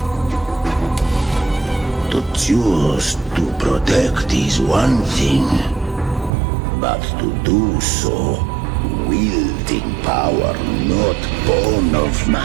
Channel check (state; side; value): drops out; left; at 6.3 s